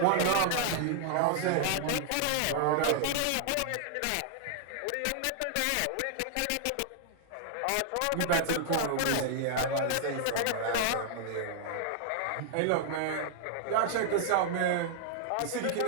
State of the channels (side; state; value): both; different; correlation -0.01